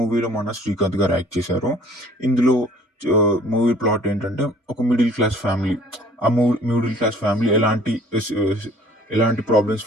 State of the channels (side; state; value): both; normal; correlation 0.54